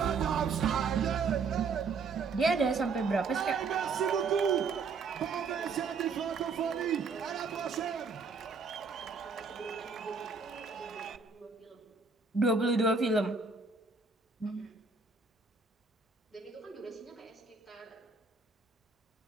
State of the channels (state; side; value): quieter; left; 4.8 dB